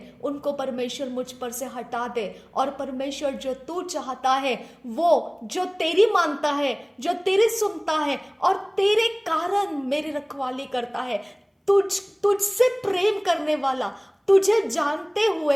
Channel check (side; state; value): both; identical; correlation 1.00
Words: उनको परमेश्वर मुझ पर से हटा दे। और परमेश्वर, जो तू चाहता है, वो जो तेरी मानता है, जो तेरी सुनता है और तेरे कारण मेरी रखवाली करता है, तुझसे प्रेम करने वाला, तुझे जानते